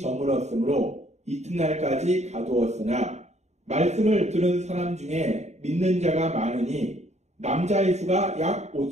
이튿날까지 가두었으나 말씀을 들은 사람 중에 믿는 자가 많으니 남자의 수가 약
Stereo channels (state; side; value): late; left; 0.32 ms